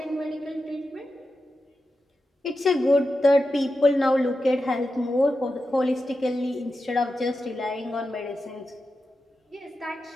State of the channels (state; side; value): normal; both; correlation 0.90